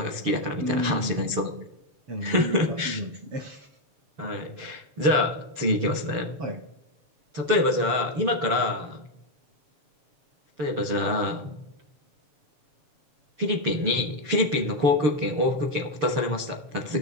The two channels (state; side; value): late; left; 6.8 ms